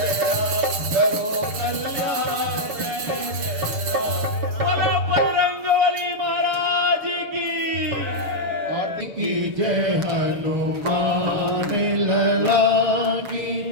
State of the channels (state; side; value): late; left; 7.1 ms